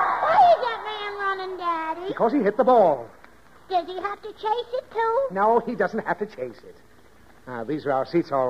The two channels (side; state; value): both; identical; correlation 1.00